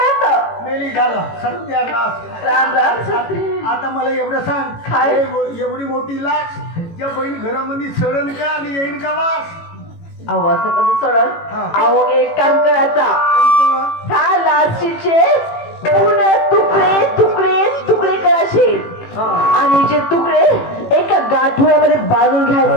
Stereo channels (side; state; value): right; late; 18 ms